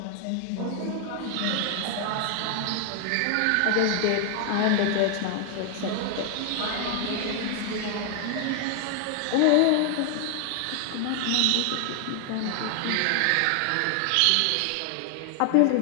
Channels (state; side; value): different; both; correlation 0.00